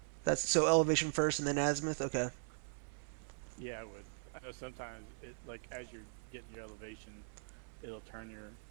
That's so elevation first and then azimuth. Okay. Yeah, I would. I know sometimes it like as you're getting your elevation, it'll turn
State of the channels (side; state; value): left; silent; 51 dB below the other